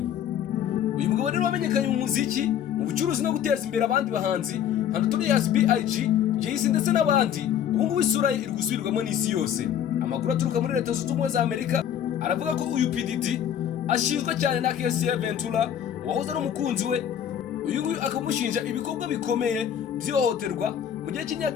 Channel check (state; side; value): quieter; right; 9.6 dB